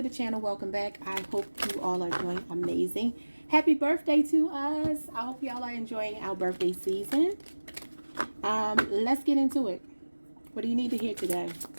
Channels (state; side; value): inverted; both; correlation -1.00